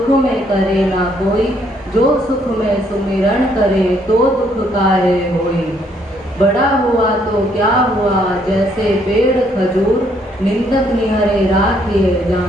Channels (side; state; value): both; normal; correlation 0.69